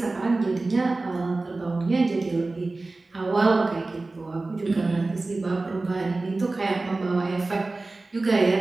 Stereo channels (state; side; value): quieter; left; 3.3 dB